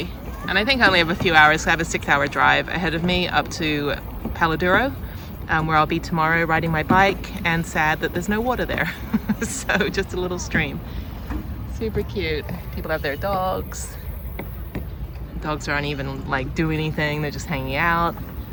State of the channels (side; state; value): both; identical; correlation 1.00